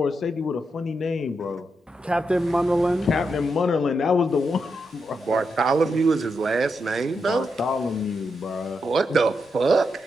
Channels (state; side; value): normal; both; correlation 0.84